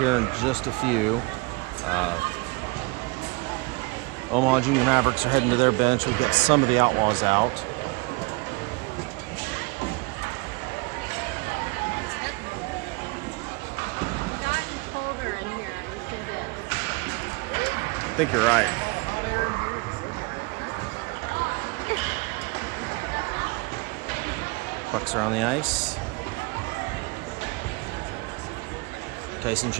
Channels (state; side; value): quieter; left; 27.3 dB